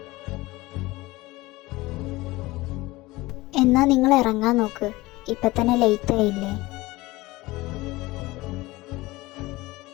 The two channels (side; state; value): right; quieter; 20.1 dB